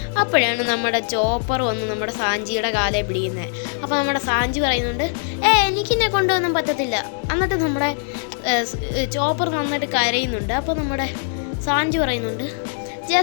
അപ്പോഴാണ് നമ്മുടെ ചോപ്പർ വന്ന് നമ്മുടെ സാഞ്ചിയുടെ കാലെ പിടിക്കുന്നത്. അപ്പോൾ നമ്മുടെ സാഞ്ചി പറയുന്നുണ്ട്, എനിക്കിന്നെ കൊണ്ടുവന്നും പറ്റത്തില്ല. എന്നിട്ട് നമ്മുടെ ചോപ്പർ നന്നായിട്ട് കരയുന്നുണ്ട്. അപ്പോൾ നമ്മുടെ സാഞ്ചി പറയുന്നുണ്ട്,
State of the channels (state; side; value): silent; right; 65 dB below the other